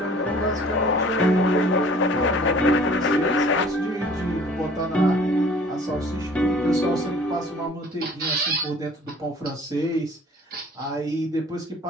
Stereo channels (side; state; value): both; normal; correlation 0.51